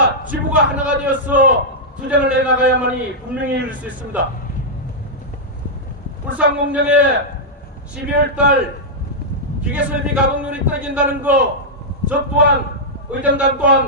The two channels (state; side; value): normal; both; correlation -0.08